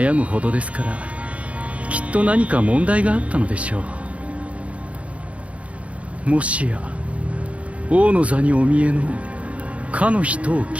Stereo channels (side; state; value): left; late; 0.064 ms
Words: むほどですから、きっと何か問題があったのでしょう。もしや王の座にお見えのかの人を